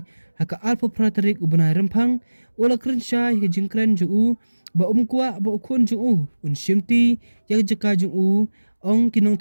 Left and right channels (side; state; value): both; inverted; correlation -1.00